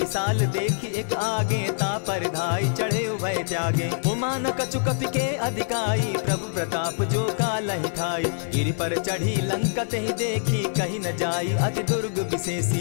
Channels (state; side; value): silent; right; 62 dB below the other